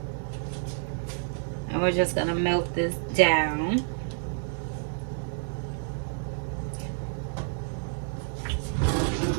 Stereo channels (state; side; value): silent; left; digital silence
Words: And we're just gonna melt this down.